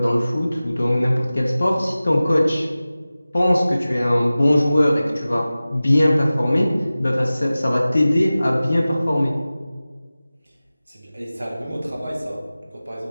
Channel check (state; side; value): inverted; both; correlation -0.97